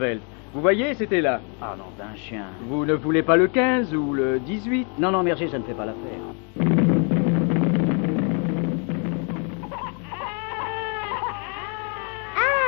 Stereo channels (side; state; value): right; quieter; 38.9 dB